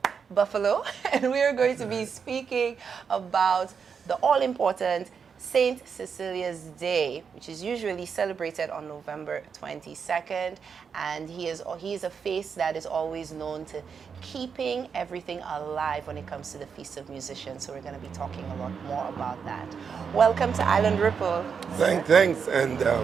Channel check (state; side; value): quieter; left; 6.3 dB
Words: Buffalo, and we are going to be speaking about the all-important Saint Cecilia's Day, which is usually celebrated on November 22nd, and he is a face that is always known to keeping everything alive when it comes to the Feast of Musicians. So we're going to be talking a lot more about that. Welcome to Island Ripple. Thanks, and